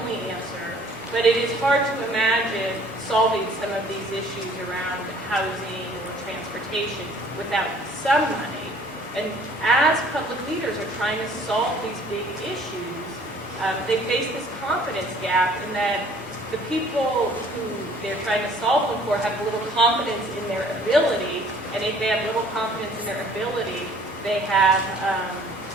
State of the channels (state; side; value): noise; right; rumble, 29 dB below the sound